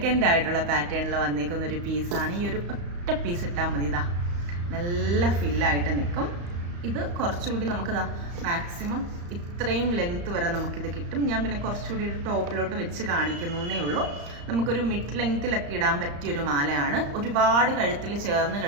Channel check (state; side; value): late; left; 35 ms